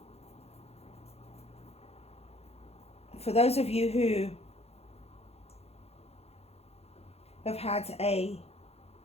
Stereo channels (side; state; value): right; late; 0.30 ms